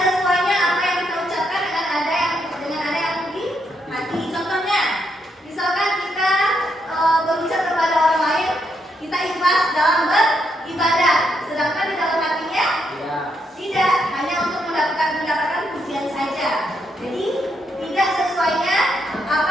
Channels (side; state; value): both; normal; correlation 0.78